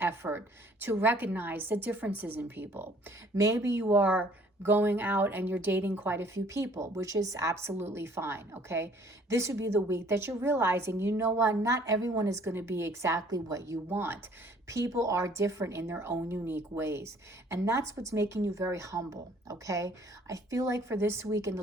effort to recognize the differences in people. Maybe you are going out and you're dating quite a few people, which is absolutely fine, okay? This would be the week that you're realizing, you know what, not everyone is going to be exactly what you want. People are different in their own unique ways. And that's what's making you very humble, okay? I feel like for this week in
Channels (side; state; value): both; normal; correlation 0.58